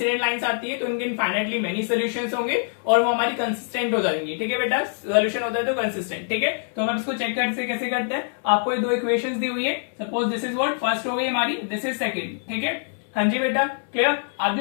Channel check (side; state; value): right; silent; 62 dB below the other